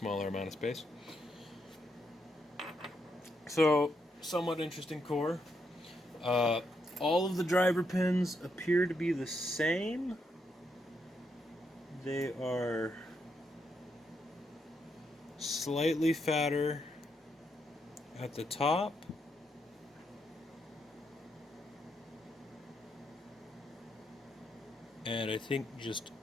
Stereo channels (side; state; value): both; normal; correlation 0.80